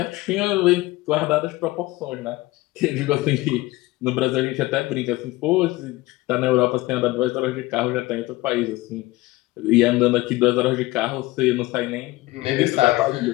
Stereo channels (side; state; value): right; quieter; 19.5 dB